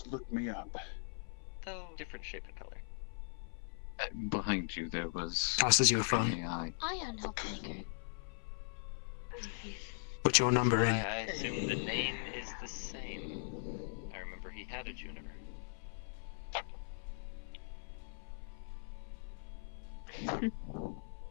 look me up. Though different shape and color. Behind you there was Tosses you a an phone. AI. Ion Helpmaker. Put your number Why, in. I assume the name is the same. I remember he had a Juniper. At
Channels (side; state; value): right; silent; 51 dB below the other